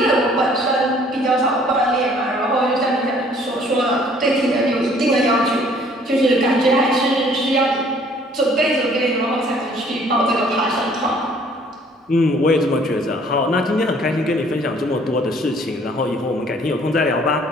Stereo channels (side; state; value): both; normal; correlation 0.58